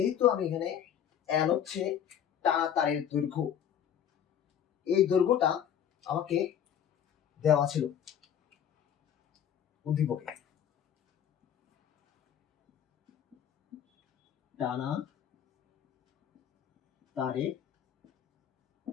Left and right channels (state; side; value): quieter; right; 9.2 dB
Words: আমি এখানে l হচ্ছে টানা তারের দৈর্ঘ্য, এই দৈর্ঘ্যটা আমাকে দেওয়া ছিল উদ্দীপকে। টানা তারের